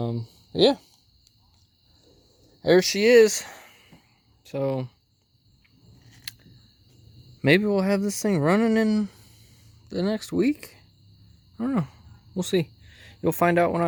Yeah, there she is. So maybe we'll have this thing running in the next week. I don't know. We'll see. You'll find out when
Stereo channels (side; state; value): both; identical; correlation 1.00